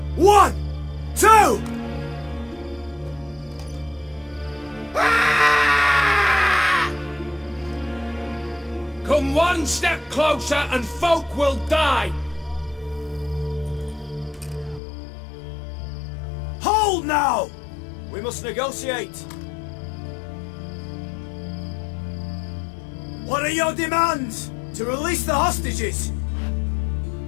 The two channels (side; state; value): right; drops out; at 14.8 s